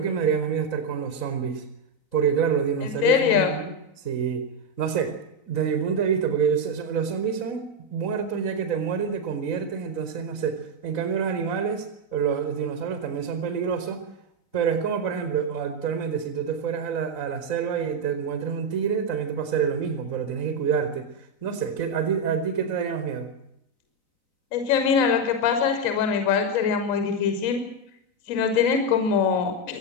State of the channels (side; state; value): right; late; 4.0 ms